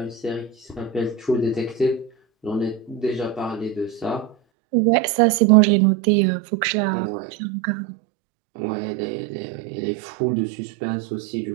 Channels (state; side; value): drops out; left; at 4.4 s